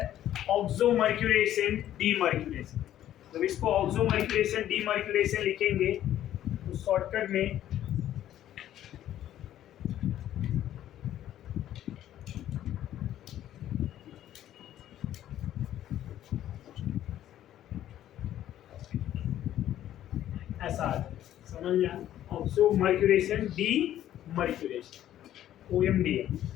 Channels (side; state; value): right; quieter; 12.1 dB